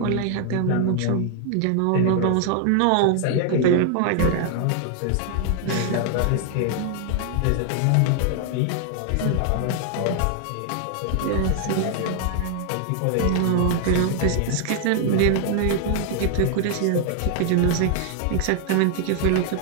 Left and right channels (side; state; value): both; different; correlation 0.00